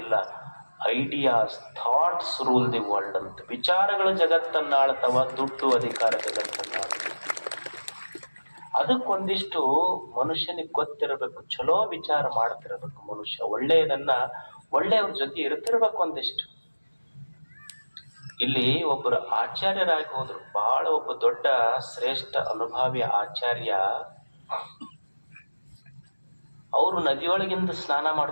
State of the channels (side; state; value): both; inverted; correlation -1.00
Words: ideas, thoughts rule the world ಅಂತ. ವಿಚಾರಗಳು ಜಗತ್ತನ್ನ ಆಳ್ತಾವ, ದುಡ್ಡು ಅಧಿಕಾರ ಜಗತ್ತನ್ನ ಆಳ್ತಾವ. ಅದಕ್ಕೊಂದಿಷ್ಟು ಮನುಷ್ಯನಿಗೆ ಗೊತ್ತಿರಬೇಕು, ಚಲೋ ವಿಚಾರ ಮಾಡ್ತಿರ್ಬೇಕು ಮನುಷ್ಯ, ಒಳ್ಳೆಯವ್ರ ಜೊತೆ ಇರ್ತಿರ್ಬೇಕು ಒಂದಿಷ್ಟು. ಇಲ್ಲಿ ಒಬ್ಬರು ಆಚಾರ್ಯರಾಗಿ ಹೋದ್ರು, ಬಹಳ ಒಬ್ಬ ದೊಡ್ಡ ಶ್ರೇಷ್ಠ ಅನುಭಾವಿ ಆಚಾರ್ಯ. ಅವರು ನದಿಯೊಳಗಿಂದ ಸ್ನಾನ